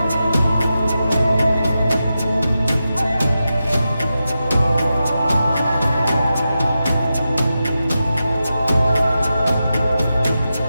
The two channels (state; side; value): inverted; both; correlation -0.90